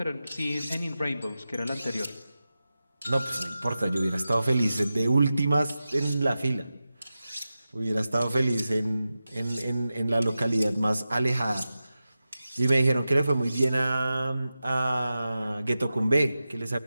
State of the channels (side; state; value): both; inverted; correlation -0.93